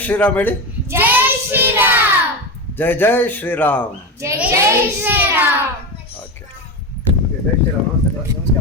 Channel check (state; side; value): normal; both; correlation 0.19